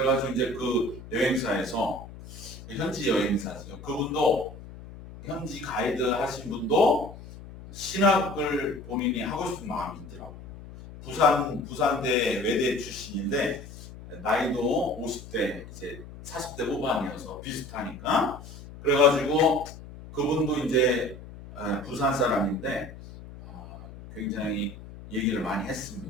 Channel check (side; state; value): left; noise; hum, 15 dB below the sound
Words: 이제 그 여행사에서 현지 여행사죠. 그분도 현지 가이드 하신 분도 신학을 본인이 하고 싶은 마음이 있더라고요. 부산대 외대 출신인데 나이도 50대 이제 40대 후반이어서 비슷하니까 그래가지고 그분도 이제 부산 사람인데 굉장히 얘기를 많이